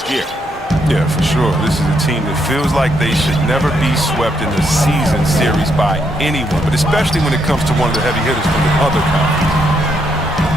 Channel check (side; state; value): both; normal; correlation 0.76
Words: year. Yeah, for sure. This is a team that feels like they should never be swept in the season series by anyone, but especially when it comes to one of the heavy hitters from the other conference.